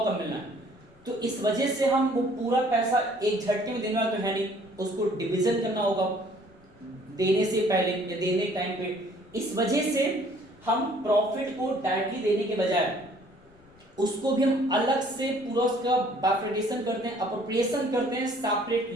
कम मिलना है। तो इस वजह से हम वो पूरा पैसा एक झटके में देने वाला तो है नहीं, उसको डिवीजन करना होगा देने से पहले या देने टाइम पे। इस वजह से हम प्रॉफिट को डायरेक्टली देने के बजाय उसको भी हम अलग से पूरा उसका बाइफरकेशन करते हैं, अप्रोप्रिएशन करते हैं सेपरेट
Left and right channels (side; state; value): left; noise; rumble, 28 dB below the sound